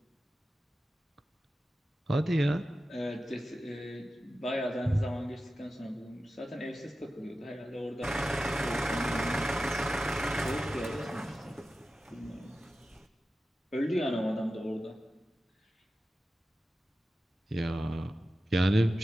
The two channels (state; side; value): normal; both; correlation 0.94